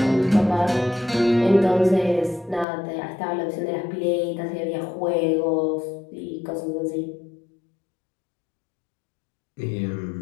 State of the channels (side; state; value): right; drops out; at 2.7 s